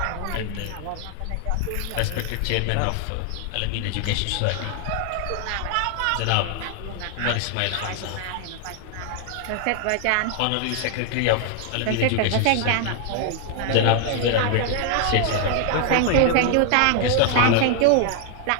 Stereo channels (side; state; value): both; different; correlation 0.00